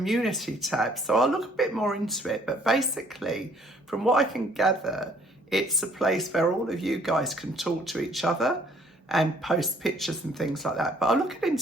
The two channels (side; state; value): both; normal; correlation 0.60